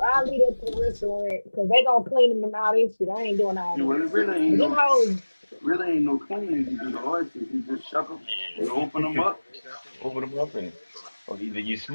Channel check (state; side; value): inverted; both; correlation -1.00